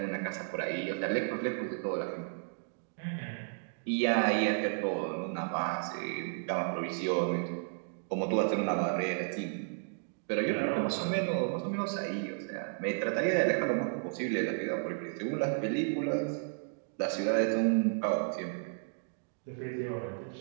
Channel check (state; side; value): silent; left; digital silence